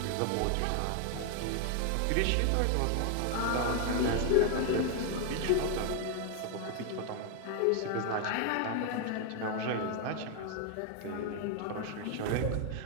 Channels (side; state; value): both; different; correlation 0.00